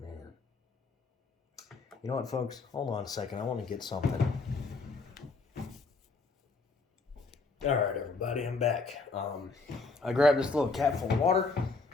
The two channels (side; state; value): right; quieter; 4.0 dB